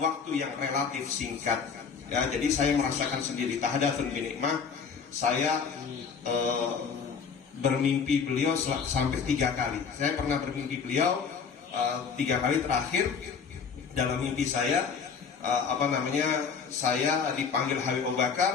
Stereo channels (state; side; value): quieter; right; 6.1 dB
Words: yang relatif singkat. Ya, jadi saya merasakan sendiri tahadatsun binikmah. Saya bermimpi beliau sampai 3 kali. Saya pernah bermimpi beliau 3 kali. Terakhir dalam mimpi saya, saya dipanggil Habib Abu